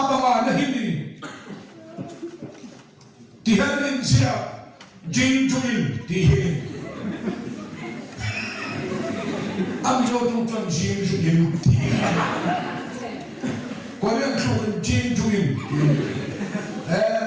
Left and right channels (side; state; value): both; identical; correlation 1.00